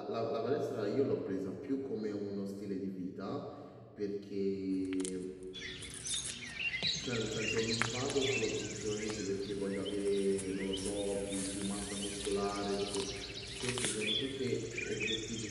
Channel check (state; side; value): identical; both; correlation 1.00